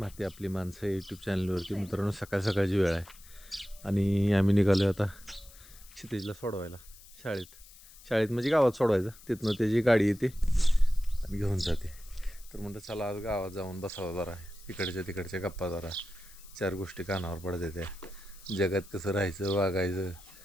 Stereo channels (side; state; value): left; noise; hiss, 21 dB below the sound